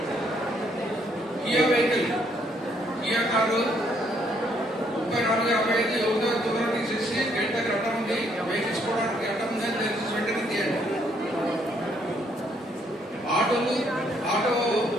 కియా వెహికల్, కియా కారు 3455 ఎవరిదో తొందర తీసేసి గేట్ దగ్గర అడ్డం ఉంది, వెహికల్స్ పోవడానికి అడ్డం ఉందని దయచేసి వెంటనే తీయండి. ఆటో కూడా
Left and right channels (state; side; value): normal; both; correlation 0.69